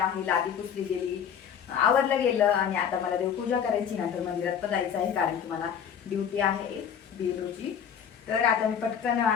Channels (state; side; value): quieter; right; 8.1 dB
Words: आहे. लादी पुसली गेली, आवरलं गेलं आणि आता मला देवपूजा करायची. नंतर मंदिरात पण जायचं आहे कारण की मला ड्युटी आहे बेलोची. तर आता मी पटकन